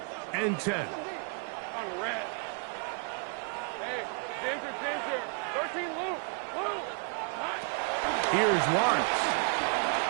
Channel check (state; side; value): quieter; left; 39.6 dB